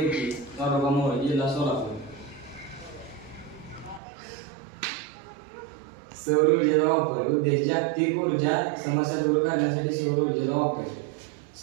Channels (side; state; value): left; drops out; at 4.0 s